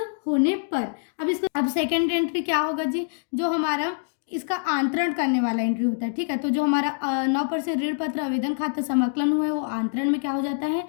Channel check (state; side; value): silent; right; digital silence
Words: होने पर। अब सेकेंड एंट्री क्या होगा जी, जो हमारा इसका आंतरण करने वाला एंट्री होता है। ठीक है, तो जो हमारा 9% ऋण पत्र आवेदन खाता समाकलन हुआ है वो आंतरण में क्या हो जाता है,